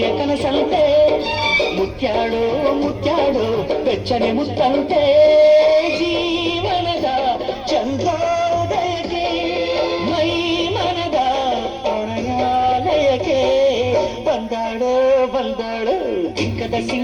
ಕನಸಂತೆ, ಮುತ್ಯಾಡೋ ಮುತ್ಯಾಡೋ ಬೆಚ್ಚನೆ ಮುತ್ತಂತೆ, ಜೀವನದ ಚಂದ್ರೋದಯಕ್ಕೆ ಮೈ ಮನದ ಪ್ರಣಯಾಲಯಕ್ಕೆ. ಬಂದಾಳೋ ಬಂದಾಳು ಬಿಂಕದ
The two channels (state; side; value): identical; both; correlation 1.00